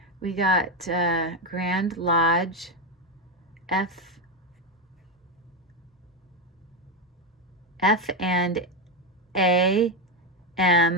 We got Grand Lodge F and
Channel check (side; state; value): both; normal; correlation 0.09